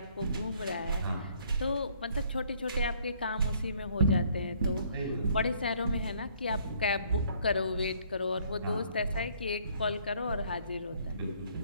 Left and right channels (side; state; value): both; inverted; correlation -0.63